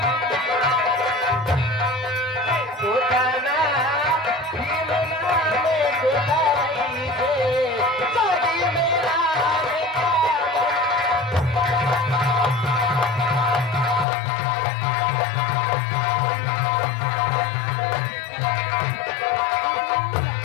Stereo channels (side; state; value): right; drops out; at 14.1 s